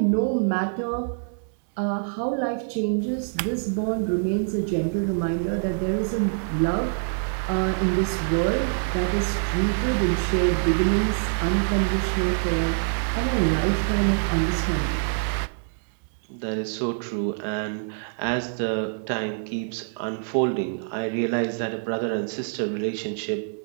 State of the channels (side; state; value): left; silent; digital silence